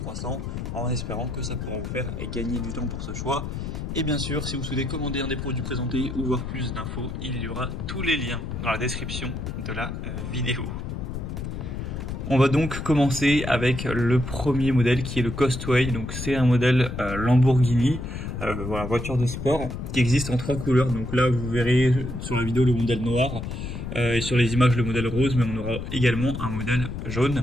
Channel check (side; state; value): left; noise; rumble, 6 dB below the sound